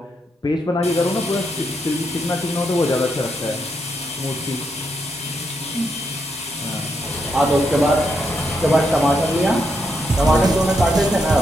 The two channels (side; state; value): both; normal; correlation 0.80